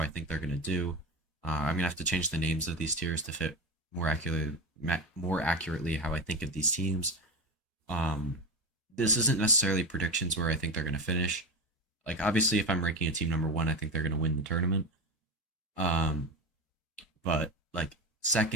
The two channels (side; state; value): both; normal; correlation 0.21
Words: I think they're going to do. I'm going to have to change the names of these tiers to fit more accurately how I think of these teams. Um, this isn't necessarily predictions where I think they're going to finish. Like obviously, if I'm ranking a team number one, I think they're going to win the tournament. Um, but like